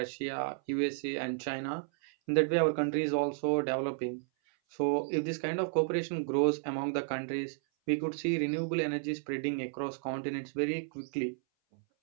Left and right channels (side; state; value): left; silent; 56 dB below the other